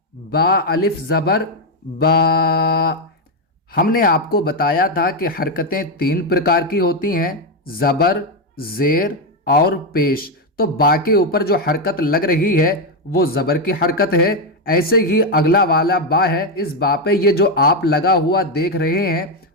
با الف زبر با۔ ہم نے آپ کو بتایا تھا کہ حرکتیں 3 پرکار کی ہوتی ہیں: زبر، زیر اور پیش۔ تو با کے اوپر جو حرکت لگ رہی ہے وہ زبر کی حرکت ہے۔ ایسے ہی اگلا والا با ہے، اس با پہ یہ جو آپ لگا ہوا دیکھ رہے ہیں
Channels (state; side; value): normal; both; correlation 0.05